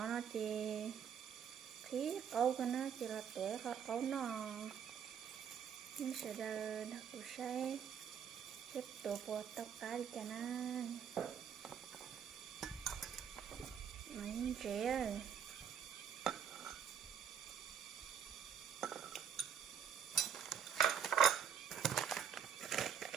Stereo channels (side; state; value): left; quieter; 7.8 dB